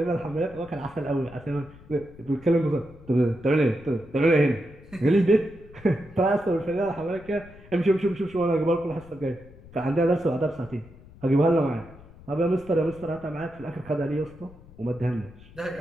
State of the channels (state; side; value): noise; left; rumble, 21 dB below the sound